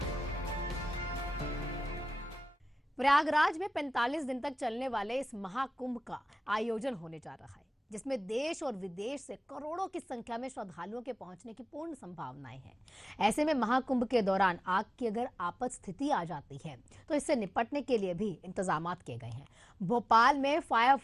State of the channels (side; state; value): both; normal; correlation 0.96